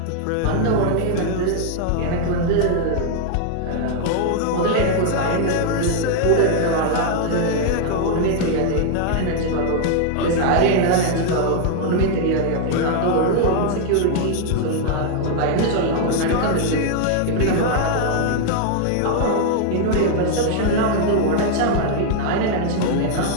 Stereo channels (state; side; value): different; both; correlation 0.00